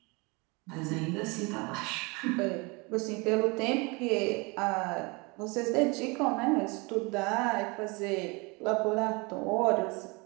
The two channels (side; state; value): left; quieter; 27.9 dB